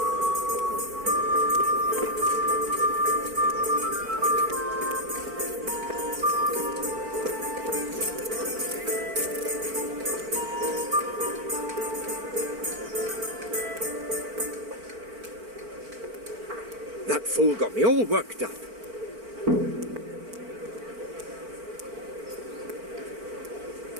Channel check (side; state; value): left; late; 4.5 ms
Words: That fool got me all worked up.